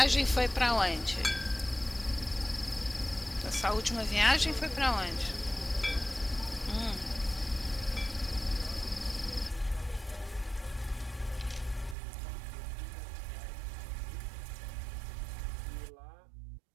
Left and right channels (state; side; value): drops out; left; at 12.0 s